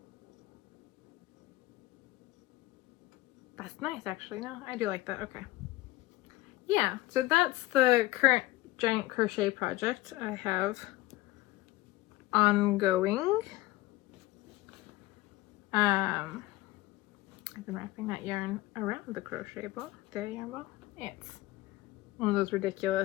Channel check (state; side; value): quieter; right; 18.0 dB